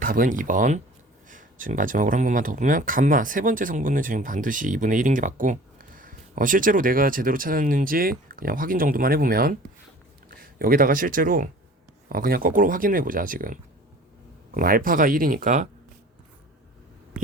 2번. 지금 마지막으로 한 번만 더 보면 감마 세 번째 성분은 지금 반드시 2분의 1인 게 맞고, 실제로 내가 제대로 찾았는지 그냥 확인 정도만 해보면, 여기다가 실제로 그냥 거꾸로 확인을 해보자. 지금 그럼 알파가 1이니까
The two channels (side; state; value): both; normal; correlation 0.45